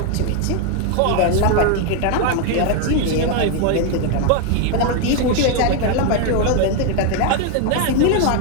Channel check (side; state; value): both; different; correlation 0.01